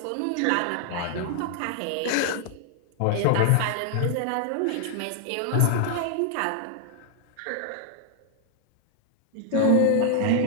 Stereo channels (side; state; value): both; different; correlation 0.00